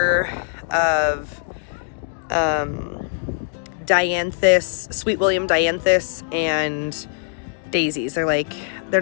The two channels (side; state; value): right; silent; digital silence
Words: of Dianthus, Sweet William Dianthus, and daisies. They're